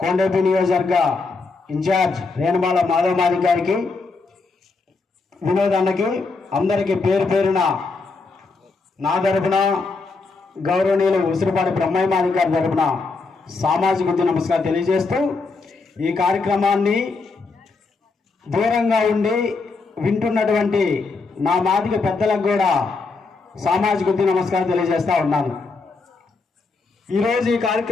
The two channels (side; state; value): right; quieter; 4.1 dB